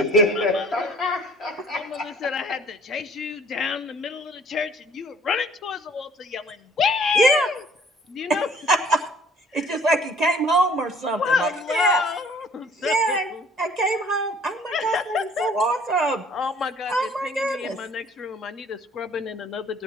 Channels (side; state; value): both; normal; correlation 0.55